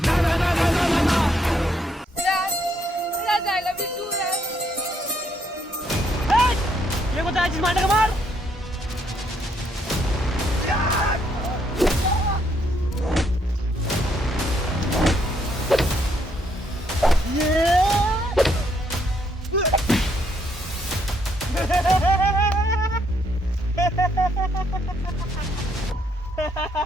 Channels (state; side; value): normal; both; correlation 0.72